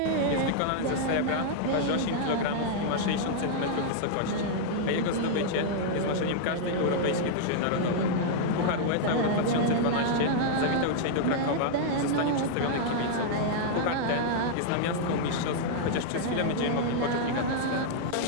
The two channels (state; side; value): different; both; correlation -0.01